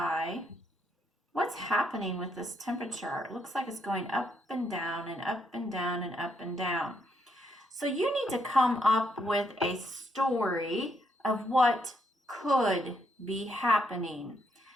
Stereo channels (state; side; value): normal; both; correlation 0.76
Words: what's happening with this temperature? It looks like it's going up and down and up and down and up and down. So you need to come up with a story of what could be happening.